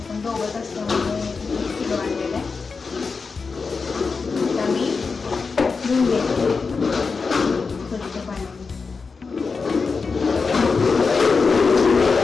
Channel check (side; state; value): right; quieter; 4.8 dB